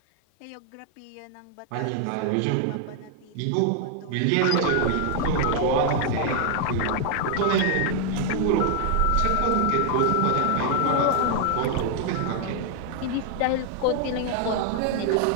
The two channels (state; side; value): different; both; correlation 0.00